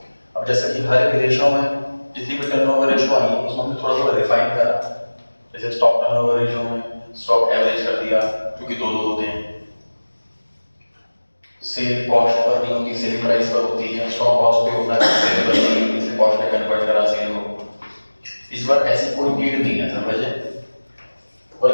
अब जैसे कि हर एक रेशियो में जितनी भी टर्नओवर रेशियो आई उसमें हमने थोड़ा थोड़ा रिफाइन करा। जैसे स्टॉक टर्नओवर रेशियो में स्टॉक एवरेज कर दिया क्योंकि दो होते हैं, सेल कॉस्ट पर नहीं होती, सेल प्राइस पर होती है, स्टॉक कॉस्ट पे होता है, सेल पर नहीं होती, इसे कॉस्ट में कन्वर्ट करा सेल को। इस बार ऐसी कोई नीड नहीं है समझे।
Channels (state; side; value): inverted; both; correlation -1.00